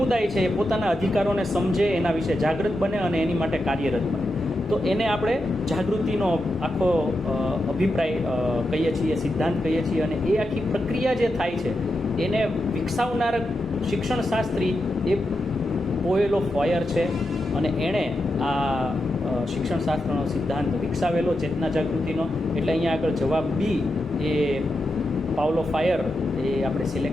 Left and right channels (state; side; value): normal; both; correlation 0.87